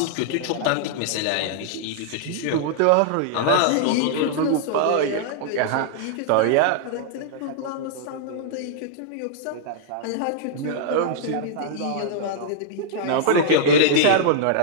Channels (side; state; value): both; different; correlation -0.01